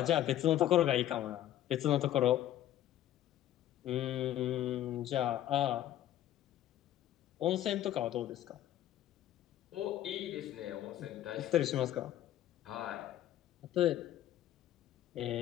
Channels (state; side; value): quieter; right; 12.6 dB